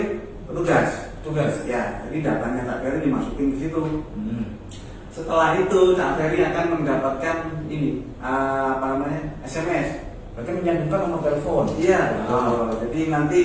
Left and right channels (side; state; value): both; identical; correlation 1.00